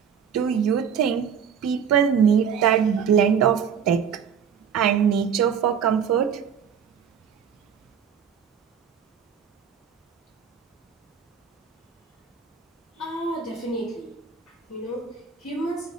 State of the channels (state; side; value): quieter; left; 7.4 dB